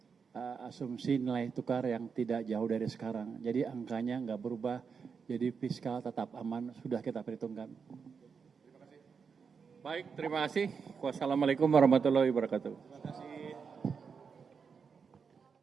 asumsi nilai tukar yang tidak jauh dari sekarang. Jadi angkanya nggak berubah, jadi fiskal tetap aman, sudah kita perhitungkan. Baik, terima kasih. Wassalamualaikum warahmatullahi wabarakatuh.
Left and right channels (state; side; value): quieter; left; 5.9 dB